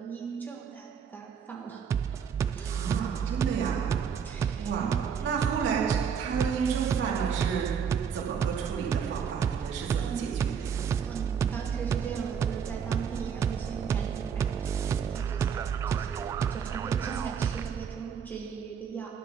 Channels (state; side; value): quieter; left; 7.1 dB